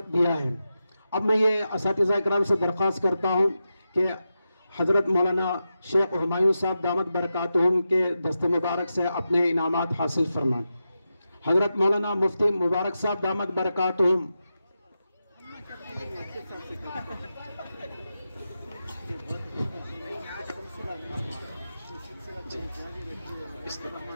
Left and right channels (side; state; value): both; inverted; correlation -0.90